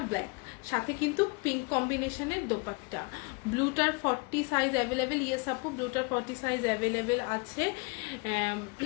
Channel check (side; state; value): right; quieter; 29.8 dB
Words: ব্ল্যাক, সাথে কিন্তু পিঙ্ক কম্বিনেশনের দোপাট্টা। ব্লুটার 40 সাইজ অ্যাভেলেবেল, ইয়েস আপু ব্লুটার 40 সাইজ অ্যাভেলেবেল আছে,